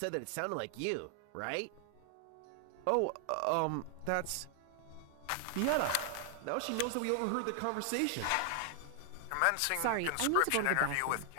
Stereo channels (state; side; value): different; both; correlation 0.00